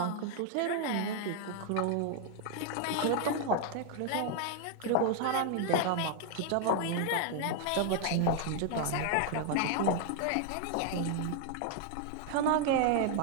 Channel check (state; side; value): different; both; correlation 0.00